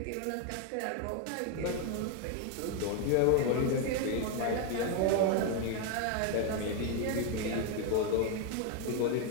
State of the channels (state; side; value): different; both; correlation 0.01